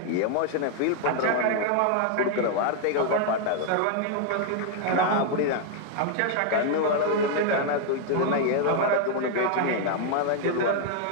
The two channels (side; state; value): both; different; correlation 0.00